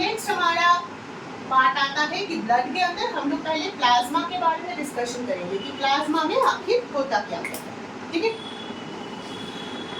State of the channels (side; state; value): both; identical; correlation 1.00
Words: हमारा पार्ट आता है कि ब्लड के अंदर हम लोग पहले प्लाज्मा के बारे में डिस्कशन करेंगे कि प्लाज्मा में आखिर होता क्या है, ठीक है।